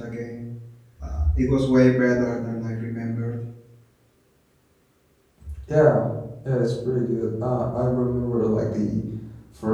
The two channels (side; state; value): both; identical; correlation 1.00